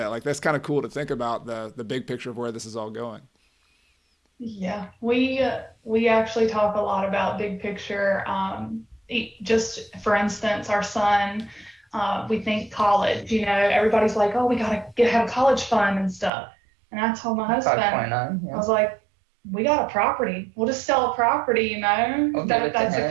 Like, that's kind of cool to think about the big picture of where this is all going. Yeah, we actually talk a lot about big picture. Just for instance, our son, we think college. Everybody's like, "Oh, we gotta have a college fund and stuff." And I told my husband, 5.9, yeah. I was like, "We got a property. We'll just sell a property. That's a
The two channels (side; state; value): left; drops out; at 16.3 s